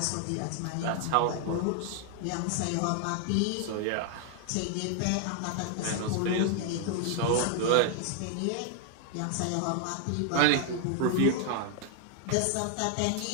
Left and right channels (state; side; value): different; both; correlation 0.00